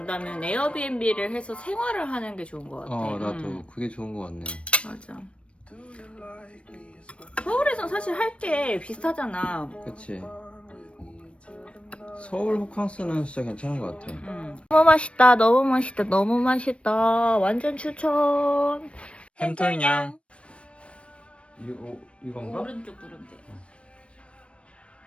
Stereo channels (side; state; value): right; late; 0.060 ms